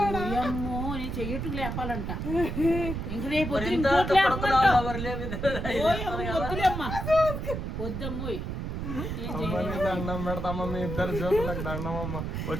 అమ్మో నేను చెయ్యట్టు లేపాలంట. ఇంక రేపు వద్దమ్మోయ్. దండం పెడతామా మీ ఇద్దరు జోకులకు దండమమ్మ.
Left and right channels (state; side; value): noise; right; rumble, 4 dB below the sound